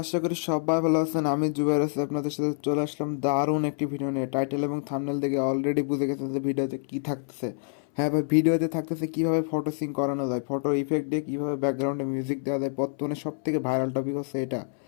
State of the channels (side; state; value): right; silent; 60 dB below the other